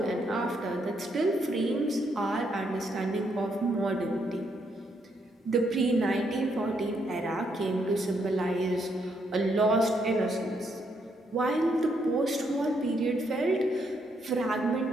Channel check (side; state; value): both; normal; correlation 0.75